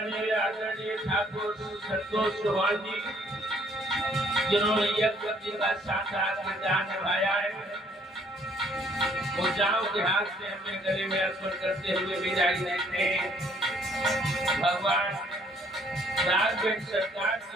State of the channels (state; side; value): normal; both; correlation 0.63